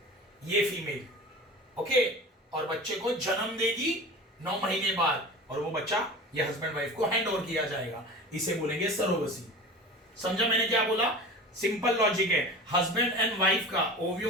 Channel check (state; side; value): normal; both; correlation 0.34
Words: ये फीमेल। ओके, और बच्चे को जन्म देगी 9 महीने बाद, और वो बच्चा ये हस्बैंड वाइफ को हैंड ओवर किया जाएगा, इसे बोलेंगे सरोगसी। समझा मैंने क्या बोला, सिंपल लॉजिक है। हस्बैंड एंड वाइफ का